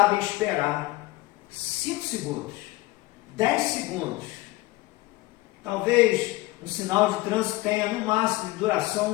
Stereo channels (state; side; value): quieter; right; 19.2 dB